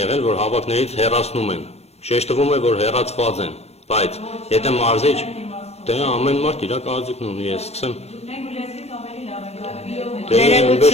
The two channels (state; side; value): late; right; 0.31 ms